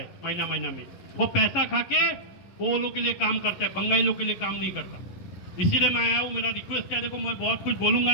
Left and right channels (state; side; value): late; right; 11 ms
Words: महीना महीना में, वो पैसा खा के वो लोग के लिए काम करता है, बंगाली लोग के लिए काम नहीं करता। इसीलिए मैं आया हूँ, मेरा रिक्वेस्ट है, देखो मैं बहुत कुछ